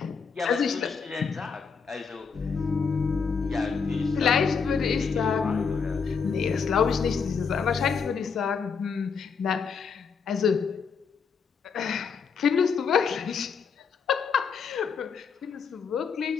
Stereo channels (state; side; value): quieter; right; 5.8 dB